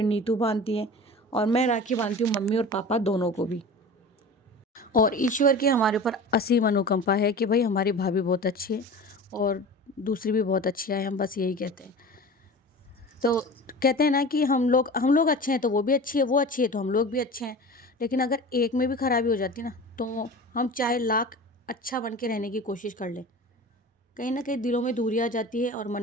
नीतू बांधती है, और मैं राखी बांधती हूँ मम्मी और पापा दोनों को भी। और ईश्वर की हमारे ऊपर असीम अनुकंपा है कि भाई हमारी भाभी बहुत अच्छी है और दूसरी भी बहुत अच्छी है, हम बस यही कहते हैं। तो कहते हैं ना कि हम लोग अच्छे हैं तो वो भी अच्छी है, वो अच्छी है तो हम लोग भी अच्छे हैं। लेकिन अगर एक में भी खराबी हो जाती है ना, तो हम चाहे लाख अच्छा बन के रहने की कोशिश कर लें, कहीं ना कहीं दिलों में दूरी आ जाती है और मन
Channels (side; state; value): both; normal; correlation 0.35